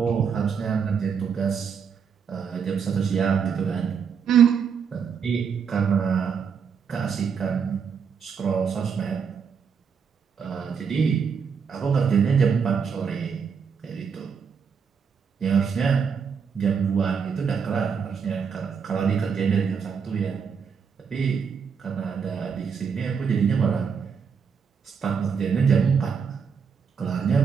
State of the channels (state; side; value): quieter; left; 6.4 dB